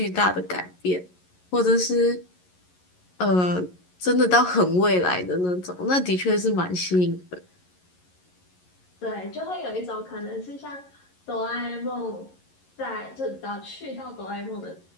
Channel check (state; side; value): late; right; 11 ms